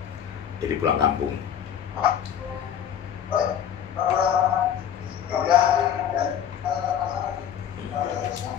jadi pulang kampung.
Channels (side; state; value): right; quieter; 9.2 dB